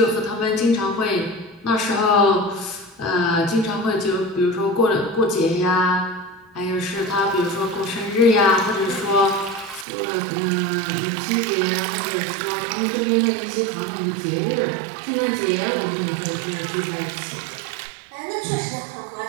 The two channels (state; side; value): drops out; left; at 9.9 s